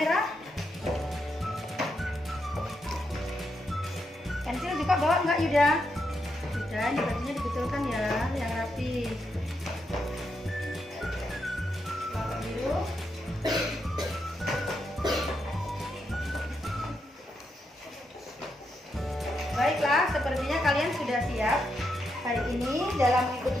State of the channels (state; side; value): normal; both; correlation 0.82